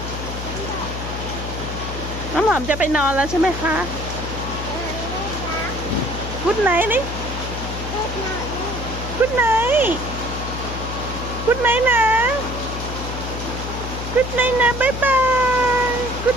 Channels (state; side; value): noise; left; hum, 6 dB below the sound